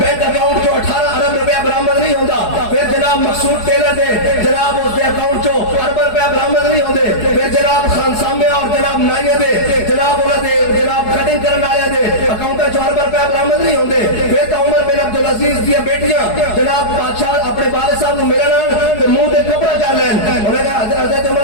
اکاؤنٹ جو 18 ارب روپیہ برآمد نہیں ہوندہ پھر جناب مقصود ٹیلر دے جناب اس دے اکاؤنٹ جو ارب روپیہ برآمد نہیں ہوندے پھر جناب خان سامے اور جناب نائیہ دے جناب انہوں دے جناب کٹنگ کرنا آیا دے اکاؤنٹ جو ارب روپیہ برآمد نہیں ہوندے پھر تو عمر بن عبدالعزیز دیا بیٹیاں جناب بادشاہ اپنے والد صاحب نے ملنا تو منہ دے کپڑا کر لین انہوں نے کہا حضرت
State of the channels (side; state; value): right; late; 4.7 ms